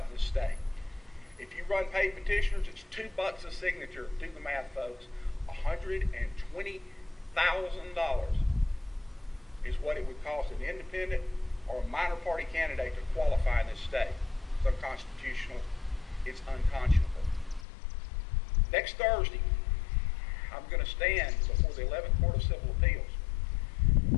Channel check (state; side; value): drops out; right; at 17.7 s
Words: in this state. If you run paid petitioners, it's $2 a signature. Do the math, folks. $120,000 is what it would cost an independent or a minor party candidate to qualify in this state. It's unconstitutional. It's unconscionable. Next Thursday, I'm going to stand before the 11th Court of Civil Appeals